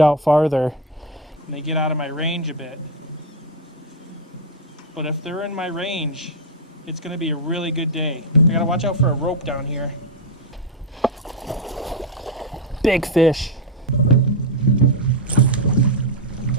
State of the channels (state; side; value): normal; both; correlation 0.05